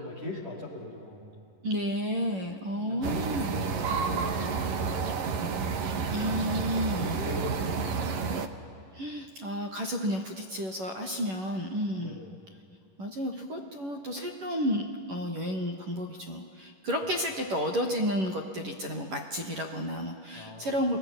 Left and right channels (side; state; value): left; late; 11 ms